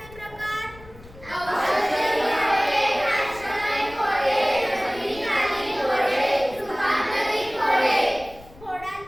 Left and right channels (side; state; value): left; noise; rumble, 21 dB below the sound